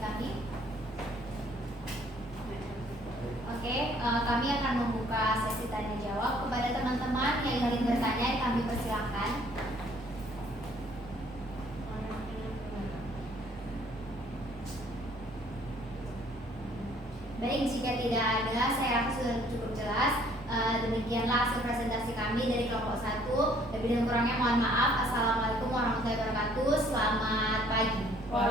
kami. Oke, kami akan membuka sesi tanya jawab. Kepada teman-teman yang ingin bertanya, kami persilahkan. Baik, jika tidak ada, saya rasa sudah cukup jelas. Demikianlah hasil presentasi kami dari kelompok 1. Lebih dan kurangnya mohon maaf. Assalamualaikum warahmatullahi wabarakatuh. Selamat pagi.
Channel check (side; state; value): both; normal; correlation 0.60